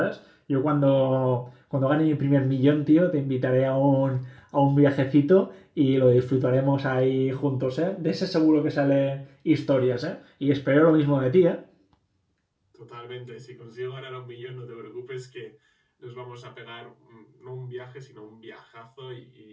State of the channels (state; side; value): identical; both; correlation 1.00